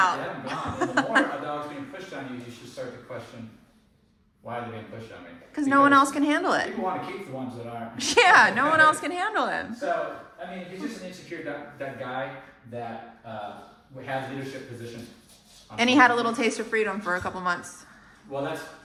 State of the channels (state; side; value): identical; both; correlation 1.00